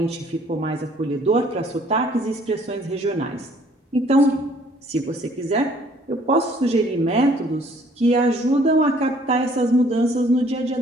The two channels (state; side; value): normal; both; correlation 0.59